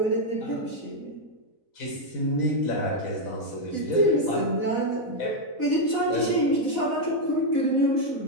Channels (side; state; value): right; late; 4.0 ms